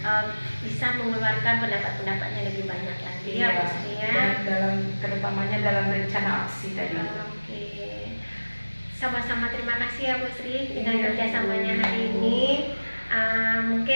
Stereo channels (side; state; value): both; inverted; correlation -1.00